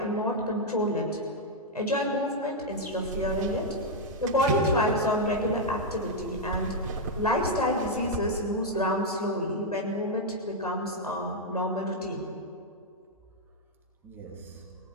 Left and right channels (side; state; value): both; normal; correlation -0.02